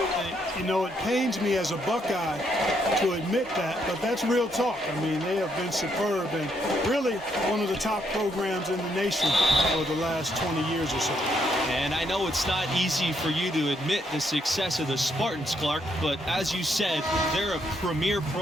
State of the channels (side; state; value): both; normal; correlation 0.74